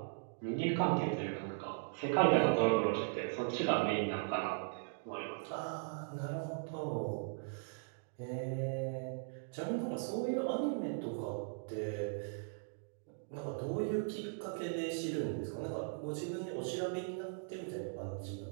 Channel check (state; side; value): silent; left; digital silence